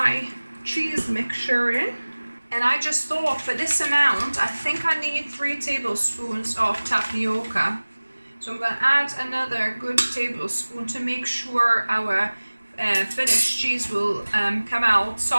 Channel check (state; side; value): inverted; both; correlation -1.00